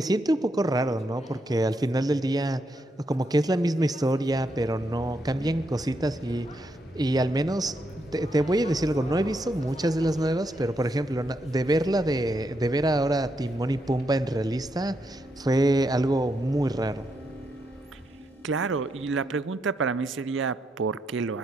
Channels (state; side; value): normal; both; correlation 0.80